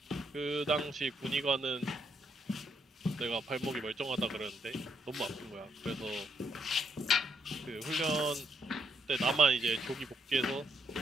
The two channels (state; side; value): normal; both; correlation 0.75